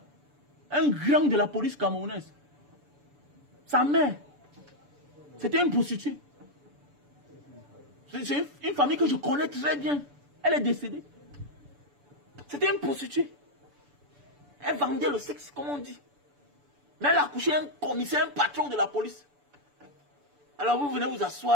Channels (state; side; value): late; left; 6.9 ms